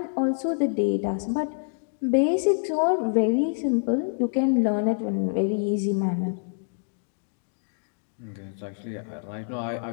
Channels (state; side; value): silent; right; digital silence